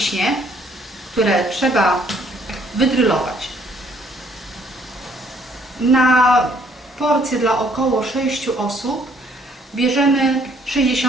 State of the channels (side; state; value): both; normal; correlation 0.64